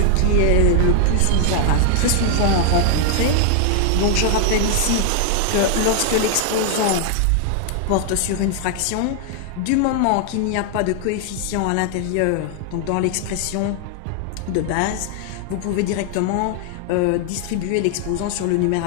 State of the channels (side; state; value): both; different; correlation 0.00